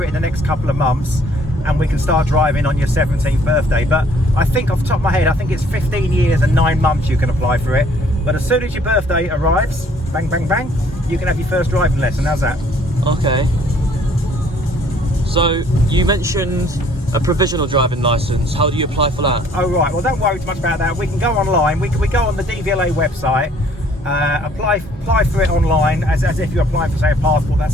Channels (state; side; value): normal; both; correlation 0.60